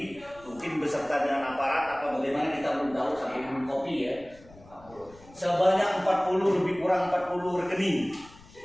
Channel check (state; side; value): noise; left; rumble, 23 dB below the sound